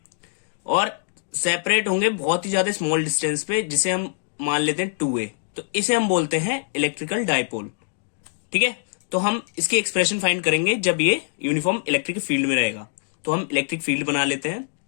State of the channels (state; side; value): silent; right; digital silence